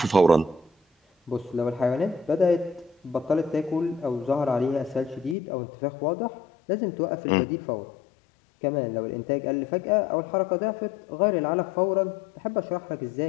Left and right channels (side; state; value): right; drops out; at 5.4 s